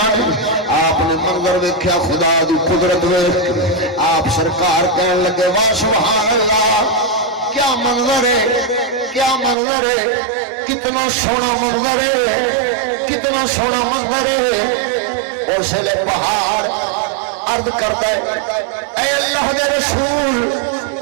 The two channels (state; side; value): drops out; left; at 9.6 s